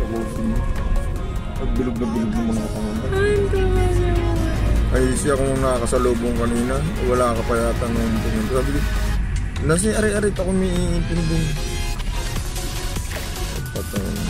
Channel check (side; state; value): both; identical; correlation 1.00